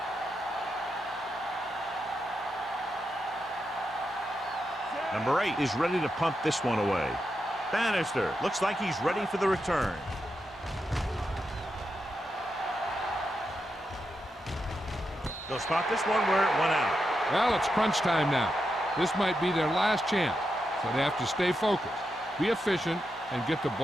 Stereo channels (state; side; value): normal; both; correlation 0.86